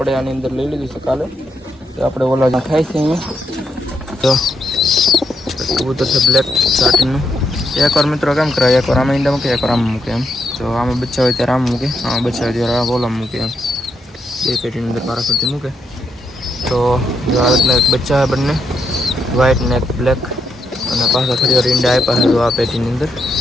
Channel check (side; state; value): both; normal; correlation 0.80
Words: આની અંદર લઈ લીધું છે કાલે. તો આપણે ઓલા ખાય છે અહીંયા. તો કબૂતર છે બ્લેક સાટીનું. એકવાર મિત્રો કેમ કરાય એકવાર આમાં ઈંડા મૂકે એકવાર આમાં મૂકે એમ. તો આમાં બચ્ચા હોય ત્યારે આમ મૂકે, આમાં બચ્ચા હોય ત્યારે આ બોલામાં મૂકે એમ. બે પેટીની અંદર મારા કરતી મૂકે. તો આ રીતના એક બચ્ચા બંને વ્હાઈટ ને એક બ્લેક અને પાછા થોડી વાર ઈંડા આપ્યા છે આ પેટીની અંદર.